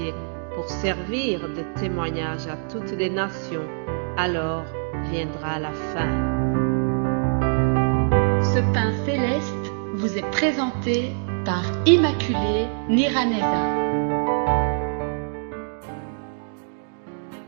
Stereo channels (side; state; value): left; silent; digital silence